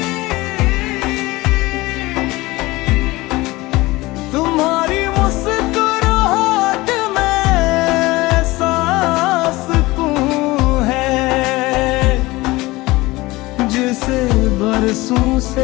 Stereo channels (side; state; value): right; quieter; 20.5 dB